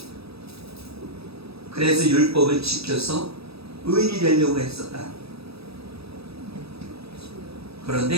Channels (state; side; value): late; left; 0.77 ms